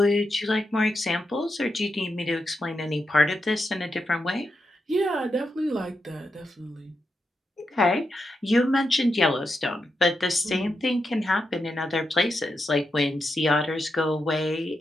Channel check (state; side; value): normal; both; correlation 0.86